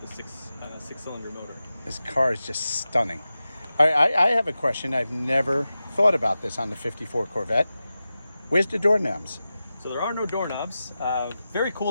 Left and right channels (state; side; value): inverted; both; correlation -0.93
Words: the six-cylinder motor. This car is just stunning. I have a question. I've never thought about this on the 54 Corvette. Where's the doorknobs? So there are no doorknobs. Very